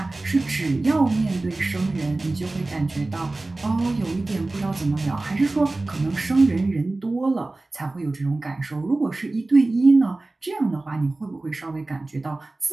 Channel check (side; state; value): left; quieter; 3.0 dB